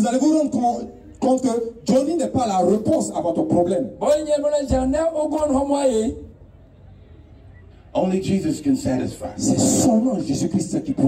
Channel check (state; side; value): identical; both; correlation 1.00